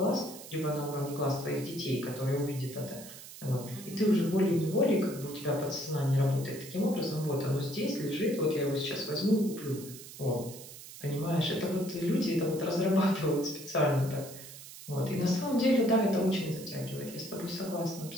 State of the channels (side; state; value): right; noise; hiss, 15 dB below the sound